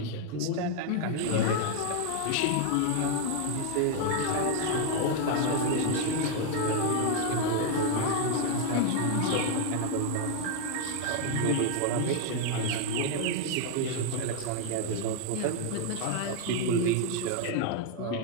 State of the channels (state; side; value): different; both; correlation 0.01